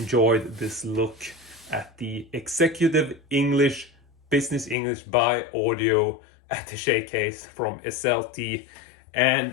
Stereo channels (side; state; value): right; drops out; at 4.8 s